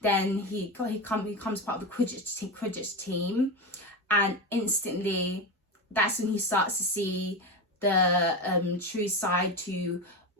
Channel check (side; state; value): both; normal; correlation 0.18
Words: he becomes part of the Quidditch team, and instantly, that's when he starts to see the true side to